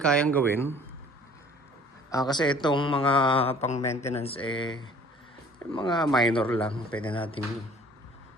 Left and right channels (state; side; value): normal; both; correlation 0.52